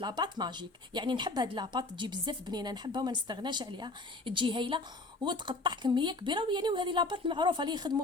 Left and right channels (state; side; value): quieter; right; 3.1 dB